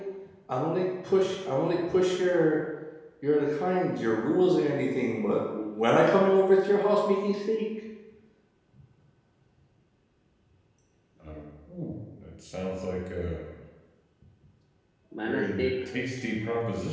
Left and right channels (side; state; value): both; identical; correlation 1.00